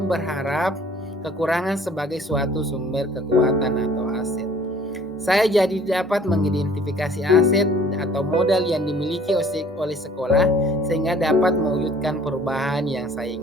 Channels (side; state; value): both; normal; correlation 0.54